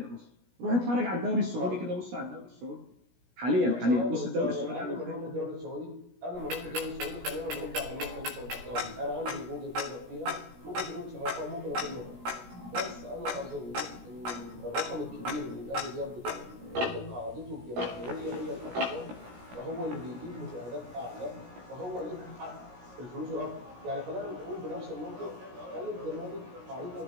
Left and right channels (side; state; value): left; late; 17 ms